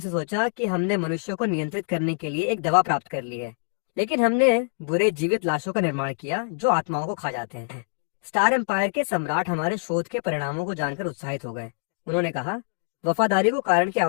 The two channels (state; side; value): silent; right; digital silence